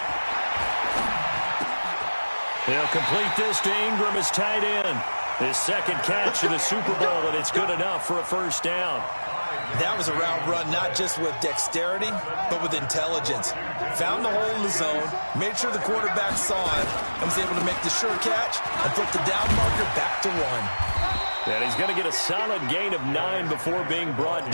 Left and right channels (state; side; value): inverted; both; correlation -1.00